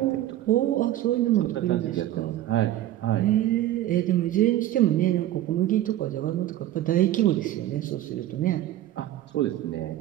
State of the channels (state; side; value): quieter; left; 13.6 dB